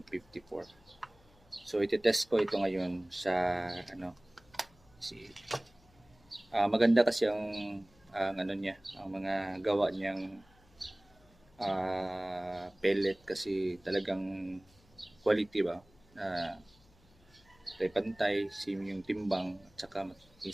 So ititest ko ito ngayon sa maganda kasi ang ano niya, ang mga gawa niyang pellet kasi talagang quality ba, pantay same yung timbang at saka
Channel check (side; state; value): left; noise; hum, 29 dB below the sound